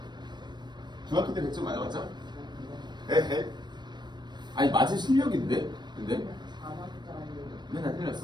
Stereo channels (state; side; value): late; left; 0.21 ms